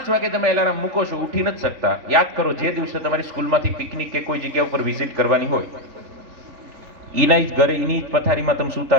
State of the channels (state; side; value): late; left; 3.4 ms